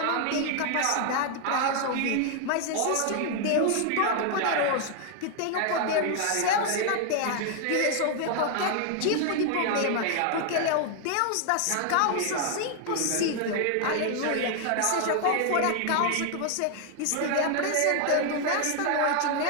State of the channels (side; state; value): both; different; correlation 0.00